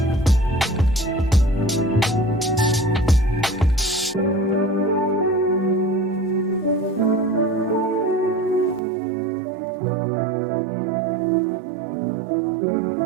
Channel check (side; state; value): left; drops out; at 8.8 s